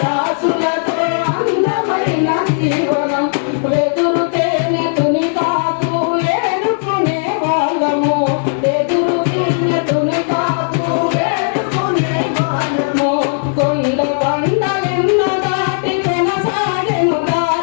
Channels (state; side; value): silent; right; digital silence